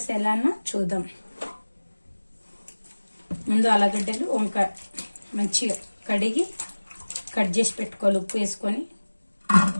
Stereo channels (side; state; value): both; inverted; correlation -1.00